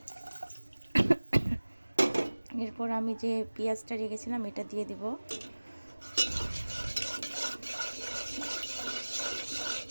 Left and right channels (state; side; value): inverted; both; correlation -1.00